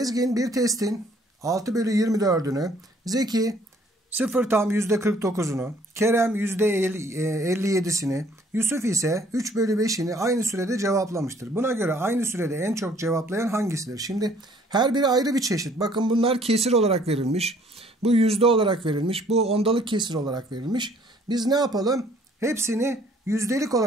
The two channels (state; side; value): normal; both; correlation 0.60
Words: bir testin 6/24'ünü, Zeki 0 tam %49'unu, Kerem %57'sini, Yusuf ise 3/5'ini aynı sürede cevaplamıştır. Buna göre aynı sürede en çok cevaplayan hangisidir? Şimdi her biri ayrı bir çeşit. Bakın bunlar kesir olarak verilmiş. Bu yüzde olarak verilmiş. Bu ondalık kesir olarak verilmiş. Biz ne yapalım? Hepsini yüzdelik